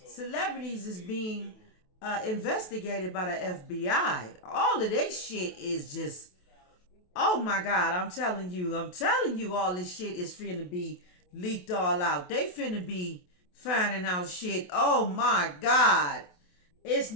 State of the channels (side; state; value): right; late; 28 ms